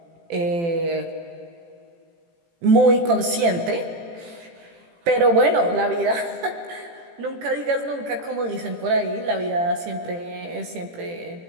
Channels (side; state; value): left; late; 18 ms